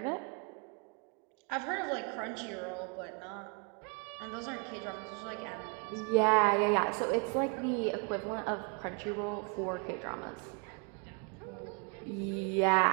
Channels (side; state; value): left; quieter; 35.5 dB